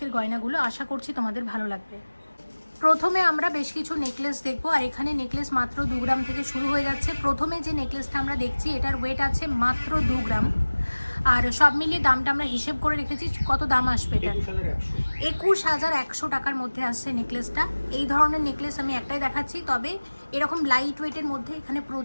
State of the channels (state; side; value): inverted; both; correlation -1.00